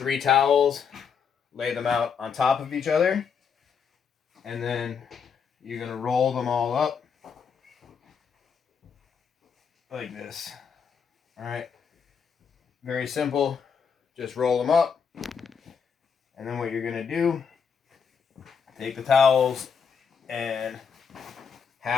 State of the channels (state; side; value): quieter; right; 6.5 dB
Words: towels, lay them out on top of each other, and then you're going to roll them all up like this. Alright, very simple. Just roll them up, and then what you're going to do, take the towels, and